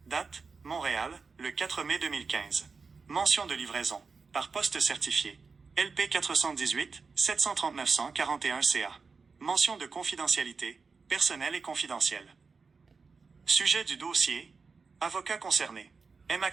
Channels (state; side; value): quieter; left; 4.8 dB